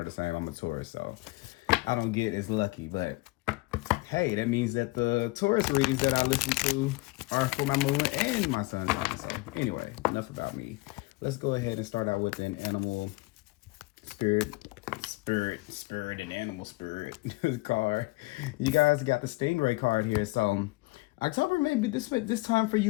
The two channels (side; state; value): right; quieter; 23.2 dB